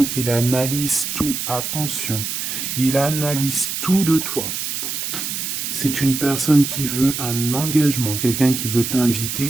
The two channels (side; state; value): right; noise; hiss, 3 dB below the sound